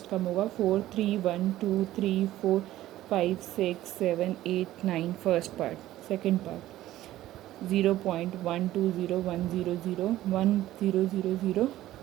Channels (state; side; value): quieter; left; 14.6 dB